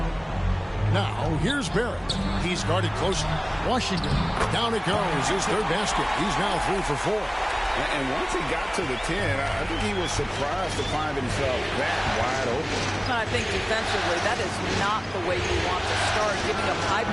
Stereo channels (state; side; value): identical; both; correlation 1.00